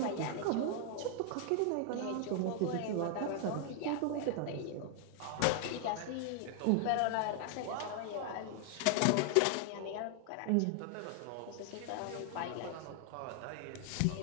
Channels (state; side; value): different; both; correlation 0.00